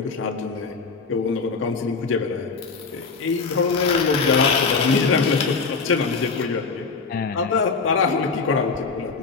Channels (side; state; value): right; quieter; 4.7 dB